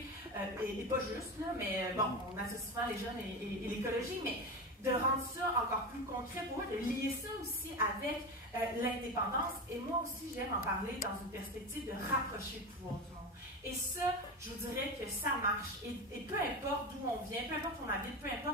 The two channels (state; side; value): normal; both; correlation 0.22